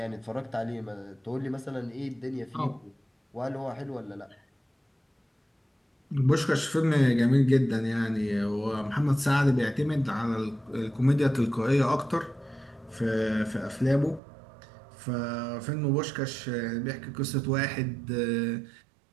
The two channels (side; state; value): left; drops out; at 14.2 s